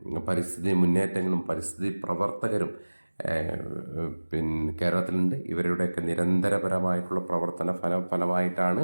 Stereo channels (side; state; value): both; inverted; correlation -1.00